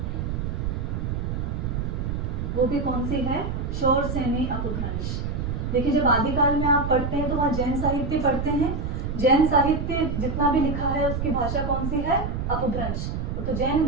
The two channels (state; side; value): noise; right; rumble, 2 dB below the sound